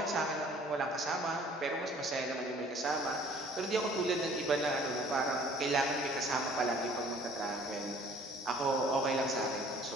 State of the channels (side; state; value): both; normal; correlation 0.54